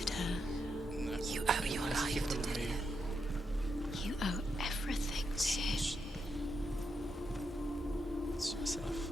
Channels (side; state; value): both; normal; correlation 0.83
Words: her. Né? You owe your Essa aqui life to pelo meio. Dillian. You owe everything to him. Deixa eu ver se é na